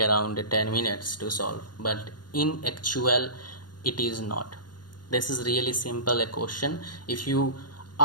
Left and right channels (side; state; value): right; late; 0.70 ms